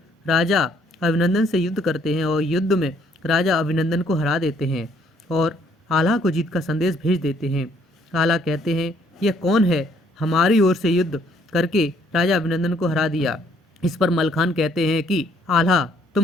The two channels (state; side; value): normal; both; correlation 0.65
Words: राजा अभिनंदन से युद्ध करते हैं और युद्ध में राजा अभिनंदन को हरा देते हैं और आल्हा को जीत का संदेश भेज देते हैं। आल्हा कहते हैं, यह कौन है, हमारी ओर से युद्ध करके राजा अभिनंदन को हरा दिया। इस पर मलखान कहते हैं कि आल्हा,